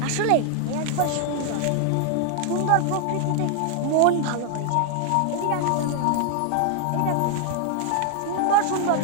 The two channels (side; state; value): both; different; correlation 0.00